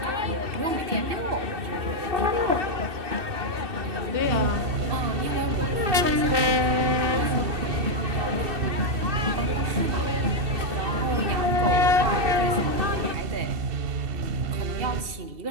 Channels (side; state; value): left; late; 2.6 ms